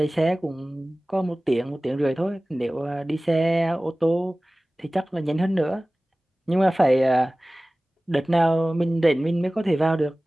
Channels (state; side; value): normal; both; correlation 0.98